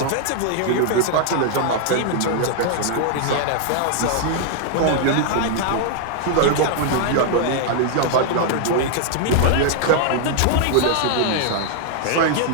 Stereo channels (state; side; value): different; both; correlation -0.01